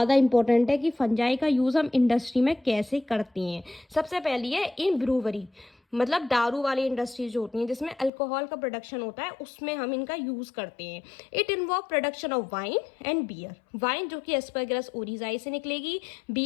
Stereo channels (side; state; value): right; drops out; at 8.1 s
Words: इंपॉर्टेंट है कि फंजाई का यूज़ हम इंडस्ट्री में कैसे करते हैं। सबसे पहली है इन ब्रूवरी, मतलब दारू वाली इंडस्ट्रीज जो होती हैं जिसमें अल्कोहल का प्रोडक्शन होता है, उसमें हम इनका यूज़ करते हैं। It involve production of wine and beer. Wine जो कि एस्परगिलस ओरिजाई से निकलेगी,